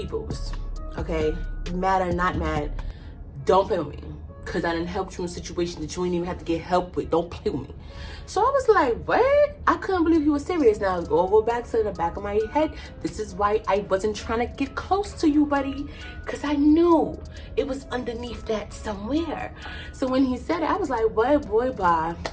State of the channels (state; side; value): identical; both; correlation 1.00